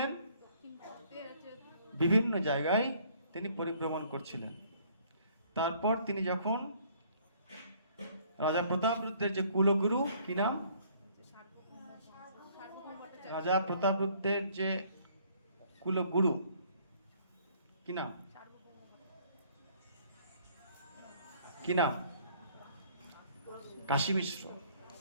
বিভিন্ন জায়গায় তিনি পরিভ্রমণ করছিলেন। তারপর তিনি যখন রাজা প্রতাপরুদ্রের যে কুলগুরু, কি নাম? রাজা প্রতাপরুদ্রের যে কুলগুরু, কি নাম? কি নাম? কাশী মিশ্র।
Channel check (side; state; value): both; inverted; correlation -0.60